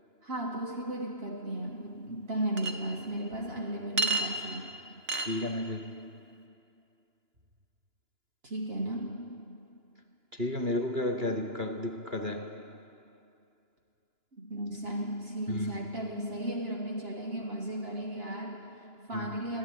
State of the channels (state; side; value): late; left; 2.9 ms